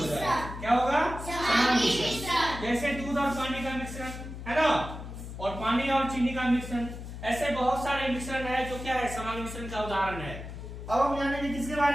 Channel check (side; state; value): left; noise; hum, 10 dB below the sound